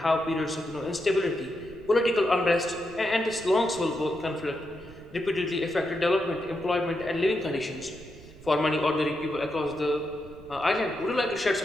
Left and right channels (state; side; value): noise; right; rumble, 19 dB below the sound